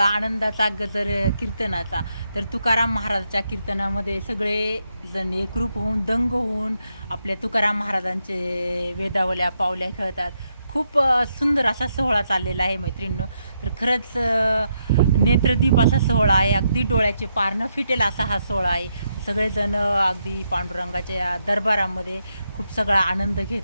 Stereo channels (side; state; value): both; inverted; correlation -0.80